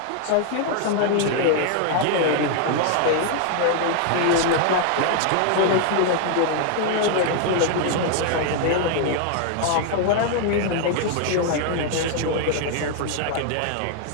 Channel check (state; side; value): different; both; correlation 0.00